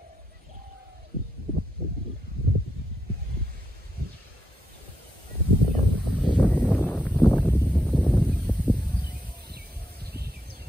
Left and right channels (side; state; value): both; normal; correlation 0.80